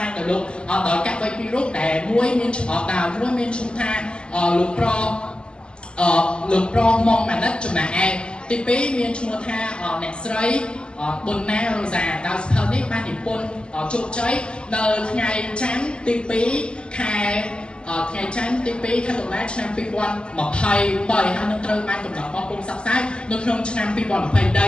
ែងដោយលោកដោយកវីពីររូបដែលមួយមានឈ្មោះមួយមានឈ្មោះថាលោកប្រមុំម៉ាណិតចំណែកឯទី2មានឈ្មោះថាអ្នកស្រីប៊ុនណារ៉ូសាដោយសភៅនេះបាននិពន្ធជោគជ័យនៅថ្ងៃច័ន្ទទី2ខែថ្ងៃច័ន្ទទី2ខែតុលាឆ្នាំ2023ហើយនឹងត្រូវបានកំណត់បោះពុម្ពផ្សព្វផ្សាយនៅក្នុងឆ្នាំ2023នេះផងដែ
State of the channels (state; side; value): late; right; 0.050 ms